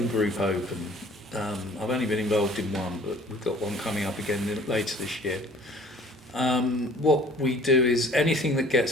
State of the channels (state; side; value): normal; both; correlation 0.51